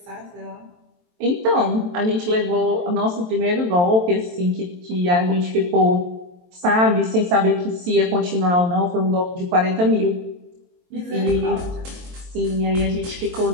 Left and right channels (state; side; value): late; left; 23 ms